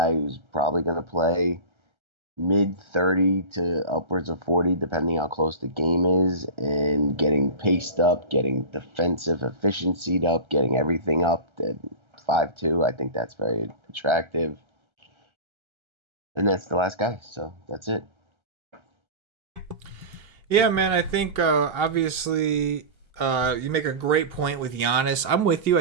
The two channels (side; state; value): left; late; 1.3 ms